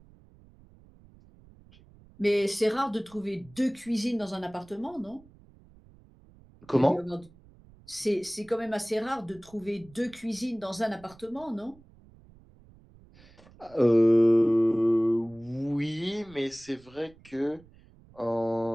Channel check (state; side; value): noise; right; rumble, 25 dB below the sound